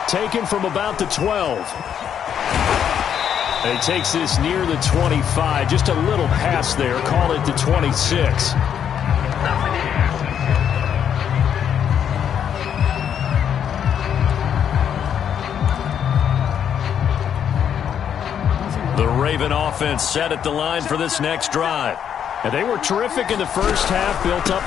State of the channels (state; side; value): quieter; right; 8.7 dB